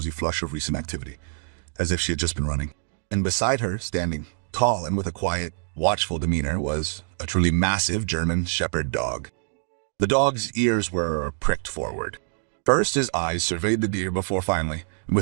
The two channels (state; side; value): silent; left; 61 dB below the other